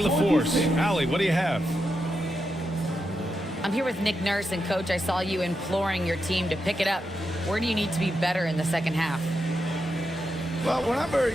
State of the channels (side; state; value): both; normal; correlation 0.86